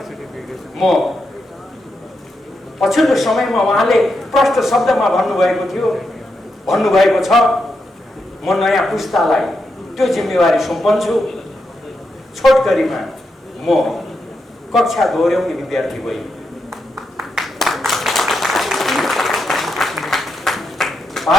म पछिल्लो समयमा उहाँले प्रष्ट शब्दमा भन्नुभएको छ, म नयाँ पुस्तालाई त्यो जिम्मेवारी सुम्पन्छु। छोटकरीमा म कक्षा दोहोऱ्याउने विद्यार्थी होइन,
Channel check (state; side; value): normal; both; correlation 0.84